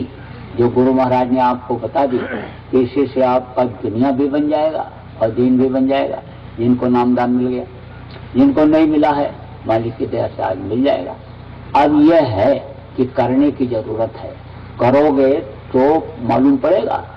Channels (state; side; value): identical; both; correlation 1.00